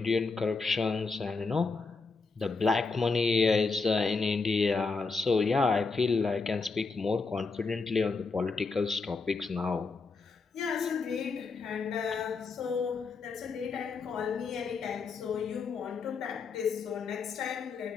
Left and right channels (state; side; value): quieter; right; 4.4 dB